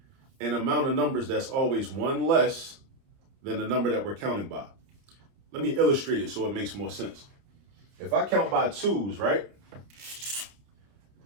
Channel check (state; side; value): late; left; 30 ms